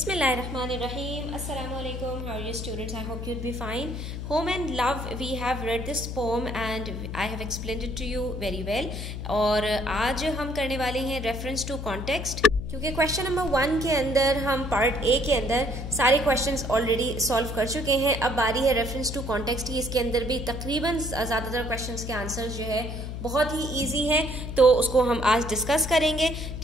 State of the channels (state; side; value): noise; left; hum, 6 dB below the sound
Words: Assalamu alaikum. How are you students? I hope you'd be fine. Home and Love, we have read this poem and I have explained it to you very well. और आज हम करने वाले हैं reference to context, क्योंकि question number 1 के अंदर हम पार्ट ए के अंदर सारे क्वेश्चंस ऑलरेडी सॉल्व कर चुके हैं। अब बारी है रेफरेंस टू कॉन्टेक्स्ट की। इसके अंदर भी तकरीबन ज़्यादातर क्वेश्चंस के आंसर्स जो है बहुत ही इजी हैं, तो उसको हम आज डिस्कस करेंगे।